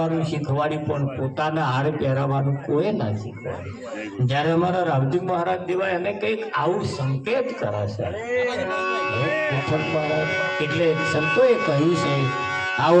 શીખવાડી પણ પોતાના હાર પહેરાવાનું કોઈ ના શીખવાડી. જયારે અમારા રાવજી મહારાજ દેવા એને કંઈક આવું સંકેત કરે છે. એટલે સંતોએ કહ્યું છે આવો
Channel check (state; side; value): identical; both; correlation 1.00